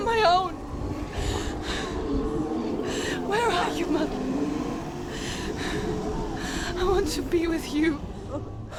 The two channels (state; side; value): identical; both; correlation 1.00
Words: my own. Where are you, Mother? I want to be with you.